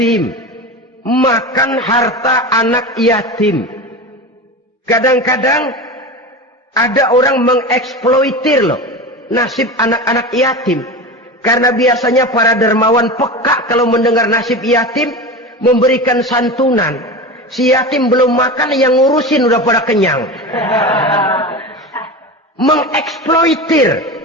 makan harta anak yatim. Kadang-kadang ada orang mengeksploitir loh nasib anak-anak yatim. Karena biasanya para dermawan peka kalau mendengar nasib yatim, memberikan santunan. Si yatim belum makan, yang ngurusin udah pada kenyang. Mengeksploitir,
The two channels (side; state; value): both; normal; correlation 0.27